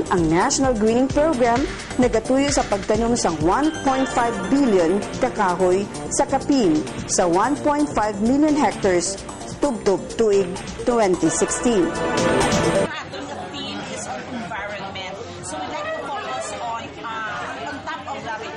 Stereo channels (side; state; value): both; identical; correlation 1.00